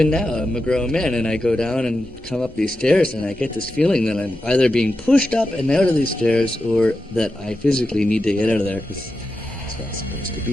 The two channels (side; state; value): both; normal; correlation 0.89